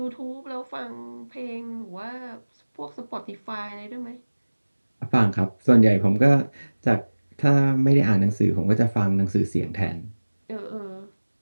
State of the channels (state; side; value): inverted; both; correlation -1.00